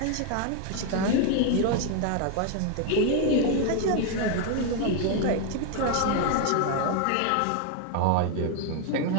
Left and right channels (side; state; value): both; different; correlation 0.01